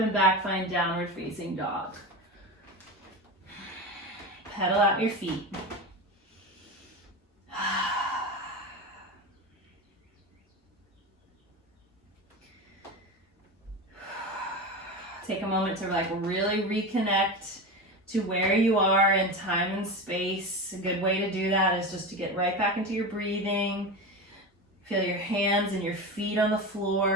back. Find downward facing dog. Pedal out your feet. Take a moment to really reconnect to where you are in time and space. A good way to do that is just to get right back into your breathing. Feel your hands and your feet on the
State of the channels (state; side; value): normal; both; correlation 0.24